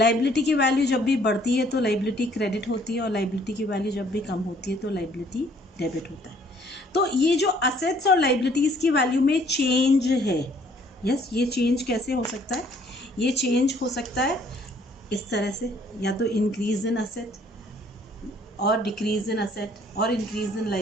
की वैल्यू जब भी बढ़ती है तो लाइबिलिटी क्रेडिट होती है, और लाइबिलिटी की वैल्यू जब भी कम होती है तो लाइबिलिटी डेबिट होता है। तो ये जो असेट्स और लाइबिलिटीज़ की वैल्यू में चेंज है, यस, ये चेंज कैसे हो सकता है? ये चेंज हो सकता है इस तरह से, या तो इंक्रीज इन असेट और डिक्रीज इन असेट, और increase in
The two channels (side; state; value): both; normal; correlation 0.61